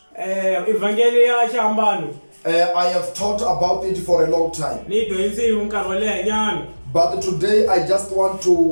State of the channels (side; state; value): both; inverted; correlation -1.00